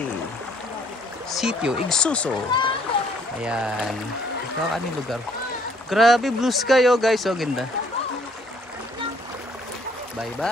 Sitio Igsuso. Ayan. Ito ang aming lugar. Grabe blue sky oh guys, oh ganda. Bye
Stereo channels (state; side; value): normal; both; correlation 0.63